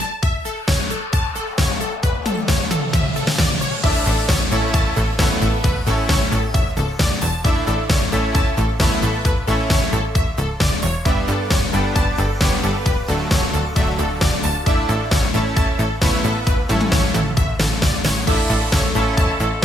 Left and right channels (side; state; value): both; normal; correlation 0.79